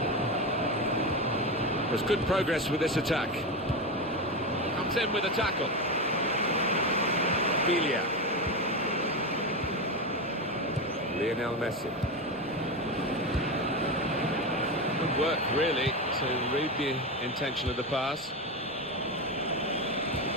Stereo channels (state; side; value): normal; both; correlation 0.16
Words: There's good progress with this attack. Comes in with a tackle. Bilia. Lionel Messi. Good work, really, to read the intention of the pass.